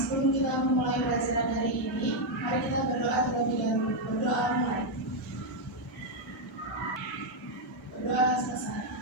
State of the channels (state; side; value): normal; both; correlation 0.01